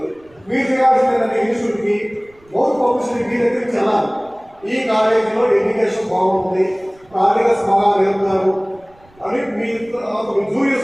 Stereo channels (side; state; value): right; noise; rumble, 30 dB below the sound